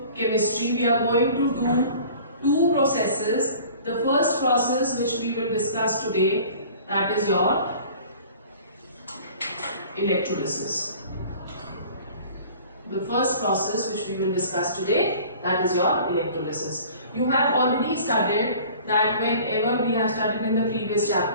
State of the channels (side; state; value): both; inverted; correlation -0.46